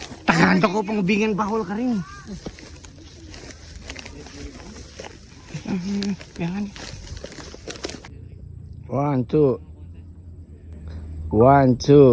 Tagando ko pang ubingan bahol ka rin. Jangan. 1, 2. 1,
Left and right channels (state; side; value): identical; both; correlation 1.00